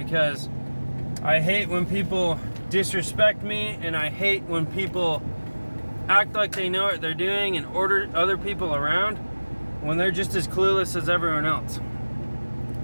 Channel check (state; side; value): inverted; both; correlation -1.00